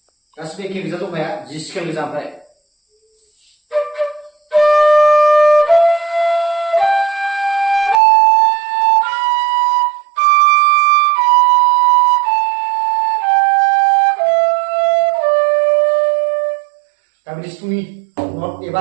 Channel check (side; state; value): left; drops out; at 8.0 s